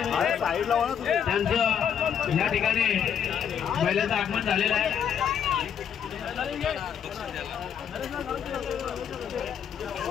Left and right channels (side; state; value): right; quieter; 8.3 dB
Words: त्यांचं या ठिकाणी बैलाचं आगमन झालेलं आहे।